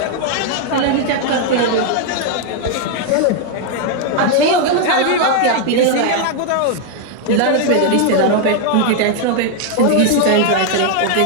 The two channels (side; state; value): both; different; correlation 0.00